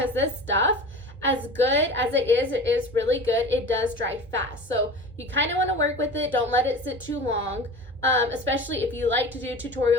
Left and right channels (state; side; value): normal; both; correlation 0.35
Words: this stuff, as good as it is really good, it does dry fast. So you kind of want to work with it. Don't let it sit too long, especially if you like to do